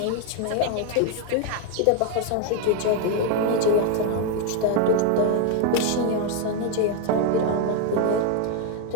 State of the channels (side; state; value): both; different; correlation 0.01